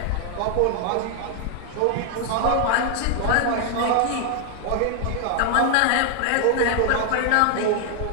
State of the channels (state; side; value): different; both; correlation 0.00